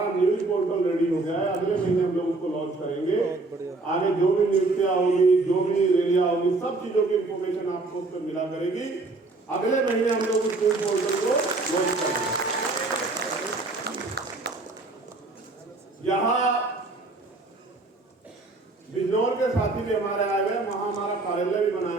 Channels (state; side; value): quieter; left; 3.3 dB